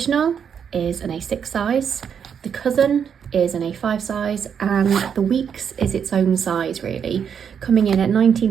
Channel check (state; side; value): quieter; left; 7.5 dB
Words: is an A6 size, the cousin is an A5 size, and the Weeks is its own size really, coming in at 19